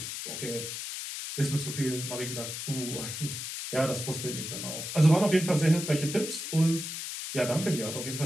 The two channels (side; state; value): left; noise; hiss, 6 dB below the sound